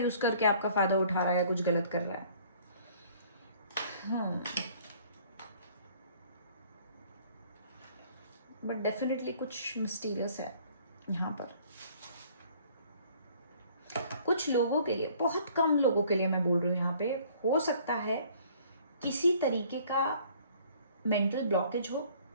करके आपका फायदा उठा रहा है, कुछ गलत कर रहा है। बट डेफिनेटली कुछ मिस्टीरियस है यहाँ पर। कुछ लोगों के लिए, बहुत कम लोगों के लिए मैं बोल रही हूँ यहाँ पे, हो सकता है किसी तरीके का मेंटल ब्लॉकेज हो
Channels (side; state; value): both; inverted; correlation -0.56